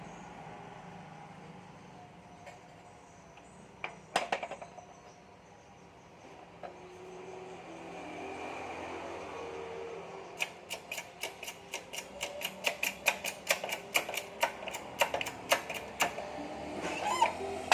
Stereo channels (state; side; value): identical; both; correlation 1.00